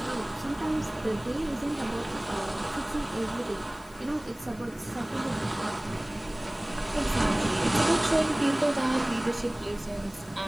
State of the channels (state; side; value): noise; left; hiss, 24 dB below the sound